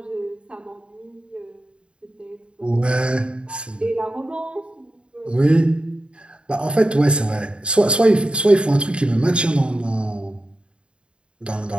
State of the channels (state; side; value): late; left; 0.054 ms